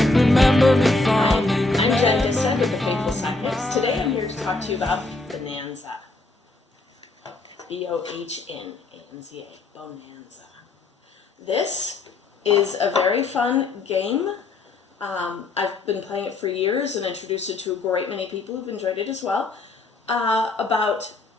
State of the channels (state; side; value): quieter; right; 3.2 dB